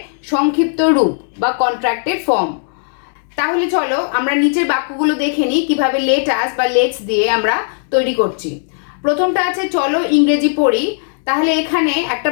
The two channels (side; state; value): right; silent; digital silence